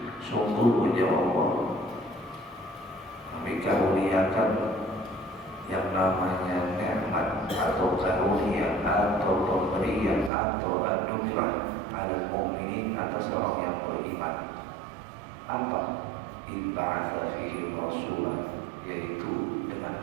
Sungguhnya Allah kami karuniakan yang namanya nikmat atau karunia atau pemberian atau anugerah 'alal mu'minin, atas orang yang beriman. Apa? Idh ba'atha fihim rasulan, yaitu dengan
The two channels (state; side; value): drops out; left; at 10.3 s